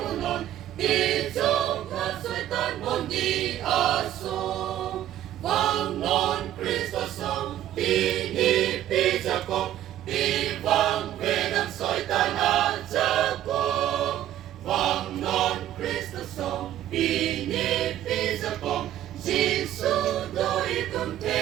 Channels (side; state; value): left; quieter; 12.4 dB